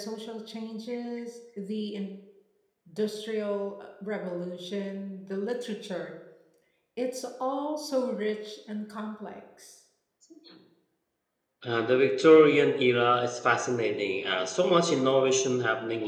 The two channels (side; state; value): both; identical; correlation 1.00